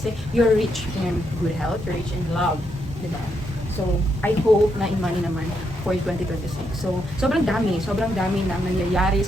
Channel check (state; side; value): normal; both; correlation 0.79